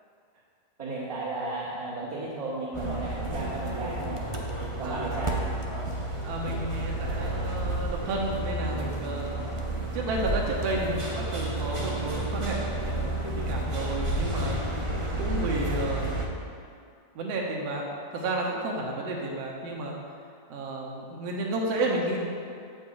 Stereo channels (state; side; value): late; right; 1.4 ms